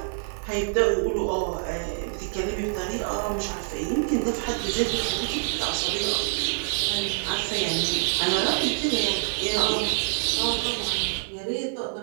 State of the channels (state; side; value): silent; left; digital silence